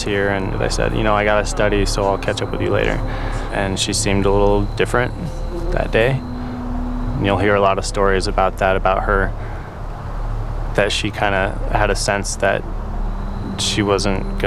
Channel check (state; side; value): identical; both; correlation 1.00